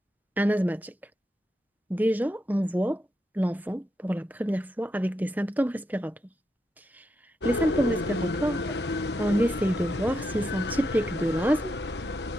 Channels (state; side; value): normal; both; correlation 0.83